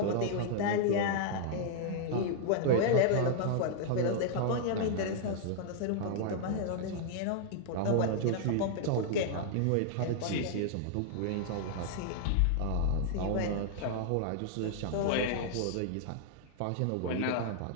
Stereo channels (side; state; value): both; different; correlation -0.01